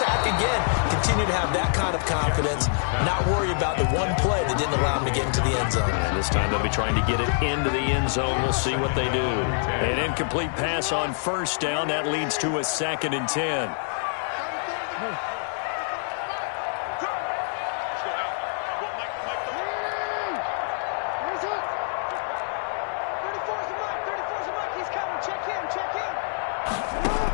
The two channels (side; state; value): right; silent; digital silence